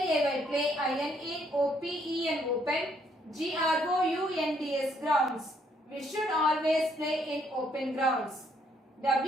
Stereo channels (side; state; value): both; normal; correlation 0.69